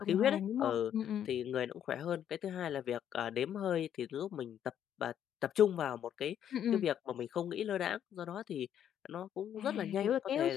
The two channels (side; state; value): right; quieter; 9.8 dB